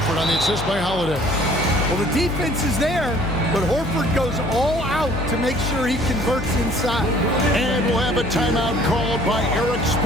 on the assist by Holiday. Well, the defense is there, but Horford goes all out to make sure he converts inside. And we'll have a timeout called by Eric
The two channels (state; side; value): noise; left; hum, 8 dB below the sound